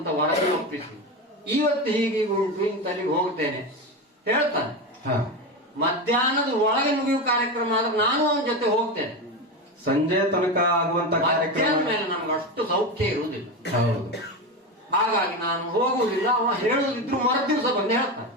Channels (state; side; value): normal; both; correlation 0.18